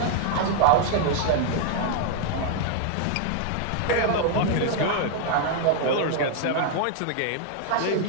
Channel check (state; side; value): different; both; correlation 0.00